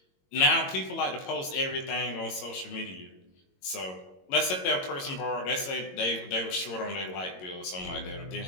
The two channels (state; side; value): late; right; 22 ms